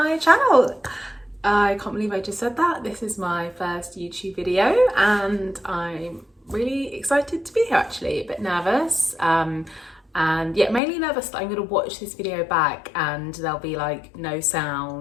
channel. I can't believe I just said that. This is my first YouTube video and I'm really excited to be here, actually. A bit nervous and yeah, mainly nervous that I'm going to watch this video back and there'll be like no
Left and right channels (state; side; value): drops out; right; at 10.8 s